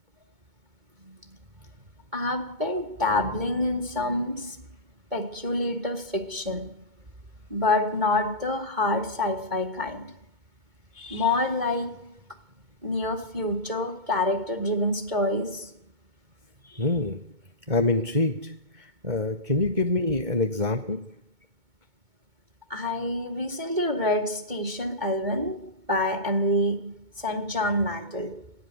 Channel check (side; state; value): left; late; 2.2 ms